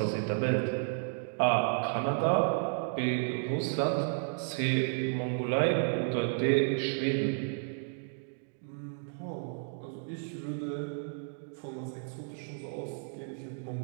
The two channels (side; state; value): left; silent; digital silence